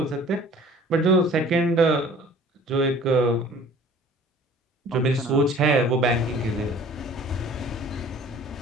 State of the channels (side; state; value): both; normal; correlation 0.49